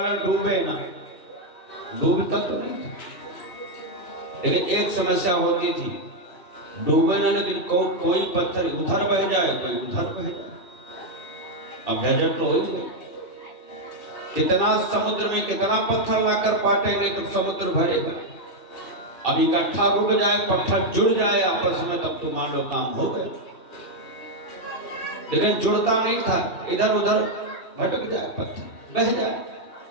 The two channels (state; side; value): late; right; 3.2 ms